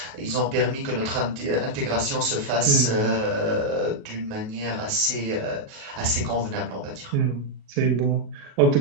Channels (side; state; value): left; late; 38 ms